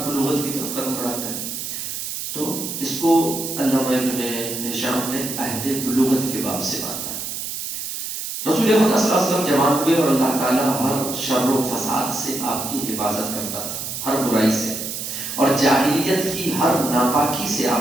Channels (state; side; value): noise; right; hiss, 5 dB below the sound